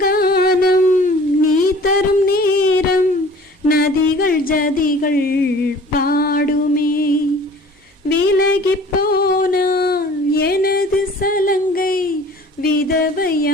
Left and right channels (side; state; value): both; normal; correlation 0.48